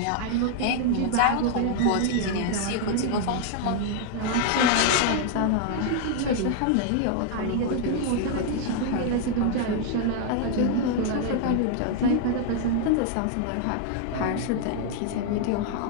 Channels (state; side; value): different; both; correlation 0.00